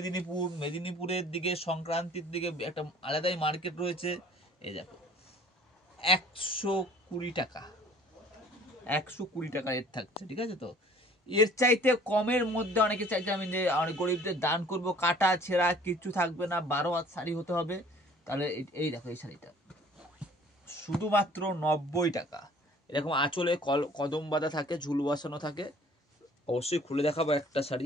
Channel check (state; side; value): normal; both; correlation 0.52